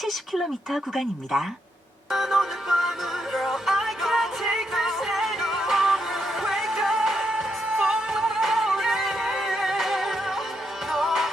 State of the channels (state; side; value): normal; both; correlation 0.80